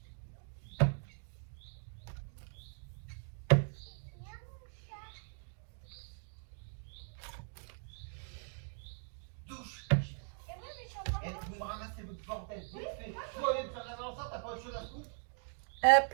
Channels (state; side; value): silent; left; 51 dB below the other